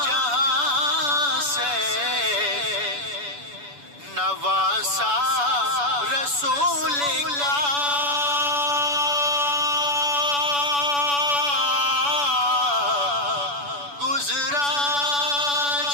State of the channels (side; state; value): left; late; 7.0 ms